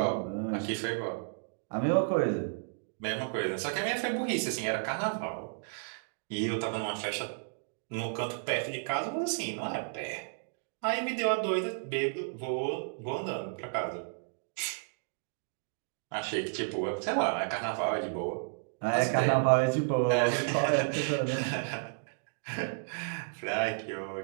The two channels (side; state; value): left; silent; digital silence